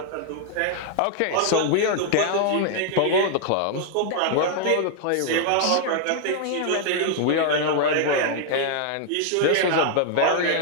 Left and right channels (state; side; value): different; both; correlation 0.00